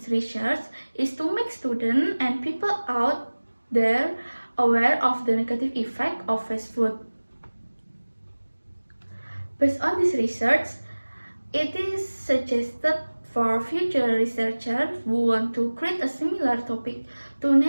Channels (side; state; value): both; inverted; correlation -1.00